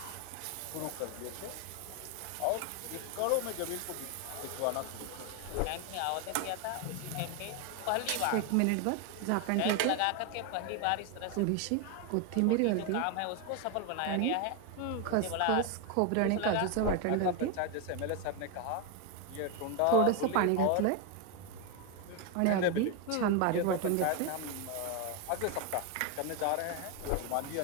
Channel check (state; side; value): different; both; correlation 0.01